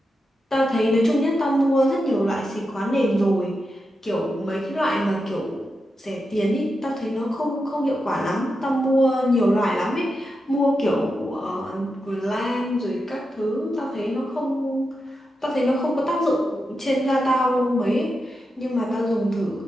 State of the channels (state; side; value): normal; both; correlation 0.88